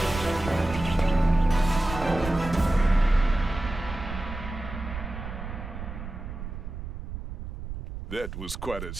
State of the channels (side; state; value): right; noise; rumble, 8 dB below the sound